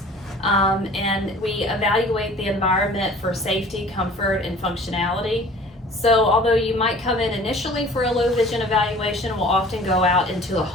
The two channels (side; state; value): both; normal; correlation 0.47